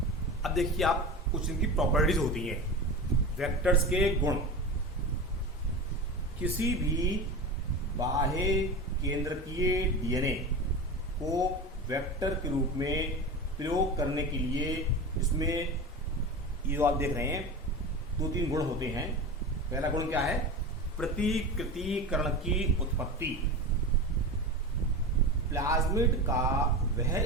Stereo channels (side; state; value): both; normal; correlation 0.27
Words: अब देखिए आप, कुछ इनकी प्रॉपर्टीज होती हैं, वेक्टर्स के गुण। किसी भी बाह्य केंद्रकीय डीएनए को वेक्टर के रूप में प्रयोग करने के लिए इसमें ये जो आप देख रहे हैं 2-3 गुण होते हैं। पहला गुण क्या है? प्रतिकृतिकरण की उत्पत्ति। प्लाज्मिड का